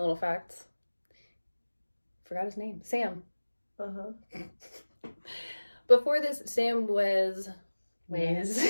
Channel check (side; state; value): both; inverted; correlation -1.00